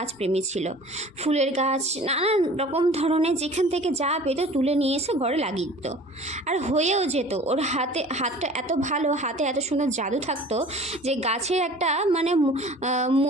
প্রেমী ছিল। ফুলের গাছ নানান রকম ধরনের যেখান থেকে যা পেতো তুলে নিয়ে এসে ঘরে লাগিয়ে দিত, আর হয়েও যেত। ওর হাতটা এত ভালো, হাতে এত সুন্দর জাদু থাকতো যে গাছের একটা মানে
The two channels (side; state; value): both; normal; correlation 0.45